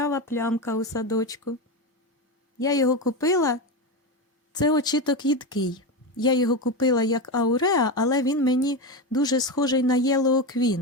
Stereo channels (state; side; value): normal; both; correlation 0.16